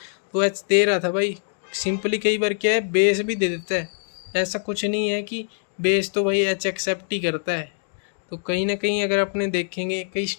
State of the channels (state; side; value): silent; right; digital silence